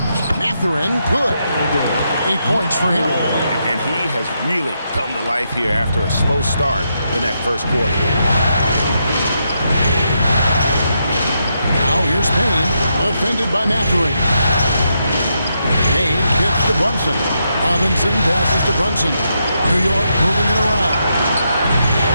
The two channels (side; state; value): both; inverted; correlation -0.81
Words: Matherin, good. 8 points for him. And he has really come to life here after a slow start in that first quarter. Now here's Payne, defended by Matherin. Payne kicks to Brunson. Robinson passes to Brunson. New York moving it around.